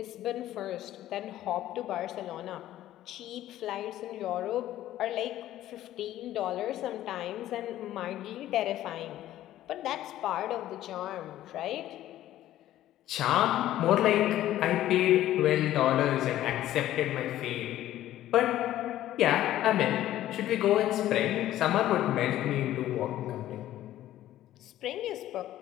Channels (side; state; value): right; quieter; 13.5 dB